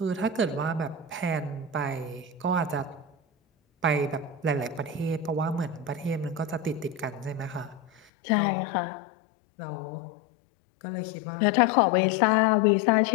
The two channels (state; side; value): drops out; right; at 8.0 s